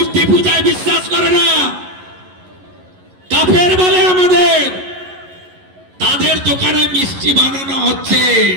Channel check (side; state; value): left; late; 11 ms